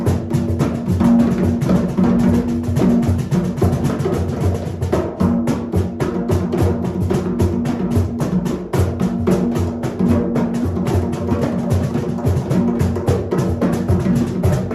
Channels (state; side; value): identical; both; correlation 1.00